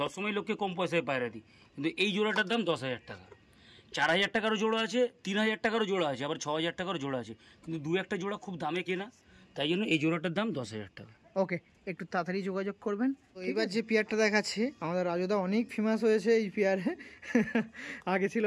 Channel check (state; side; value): identical; both; correlation 1.00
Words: সবসময় লোককে কম পয়সায় পায়রা দিই, কিন্তু এই জোড়াটার দাম 10,000 টাকা। 4,000 টাকারও জোড়া আছে, 3,000 টাকারও জোড়া আছে, আবার 6,000 টাকারও জোড়া আছে, কিন্তু 2-1টা জোড়া খুব দামে কেনা, তাই জন্য এই জোড়াটার দাম 10,000 টাকা। ওকে, একটু তাড়াতাড়ি যোগাযোগ করবেন। এবার যে পেয়ারটা দেখাচ্ছি আমাদের রাজুদা অনেক ফেমাস হয়েছে এই পেয়ারে। আগে ছিল